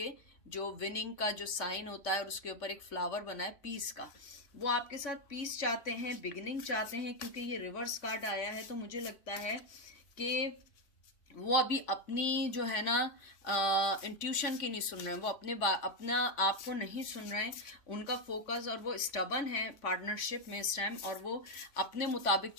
जो विनिंग का जो साइन होता है और उसके ऊपर एक फ्लावर बना है पीस का, वो आपके साथ पीस चाहते हैं, बिगिनिंग चाहते हैं, क्योंकि ये रिवर्स कार्ड आया है। तो मुझे लगता है कि वो अभी अपनी जो है ना इंट्यूशन की नहीं सुन रहे हैं, वो अपना आप को नहीं सुन रहे हैं, उनका फोकस, और वो स्टबन है पार्टनरशिप में इस टाइम, और वो अपने मुताबिक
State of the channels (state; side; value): late; right; 3.5 ms